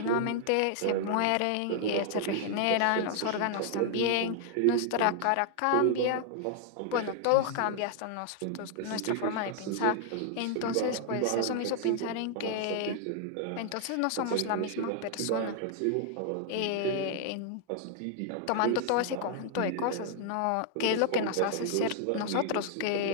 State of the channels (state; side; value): different; both; correlation 0.00